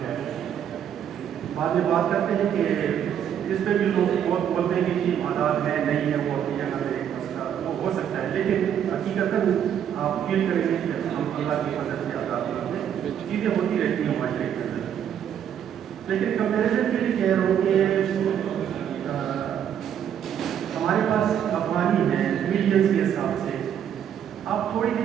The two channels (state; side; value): quieter; left; 9.2 dB